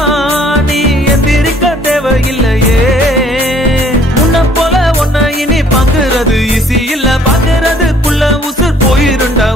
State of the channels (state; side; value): normal; both; correlation 0.59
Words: நீ எந்திரிக்க தேவையில்லையே முன்ன போல ஒன்ன இனி பாக்குறது ஈஸி இல்ல பாக்குறதுக்குள்ள உசுர் போயிருண்டா